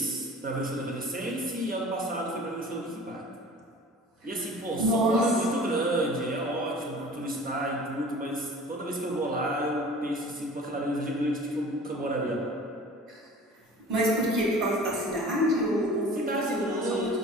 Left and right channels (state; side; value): normal; both; correlation 0.43